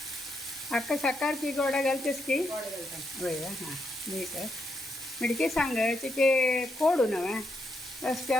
अक्का साकार की गोडा घालतेस की गोड घालता होय हां मीठ मिडकी सांगायची की कोडू नव्हे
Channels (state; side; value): normal; both; correlation 0.80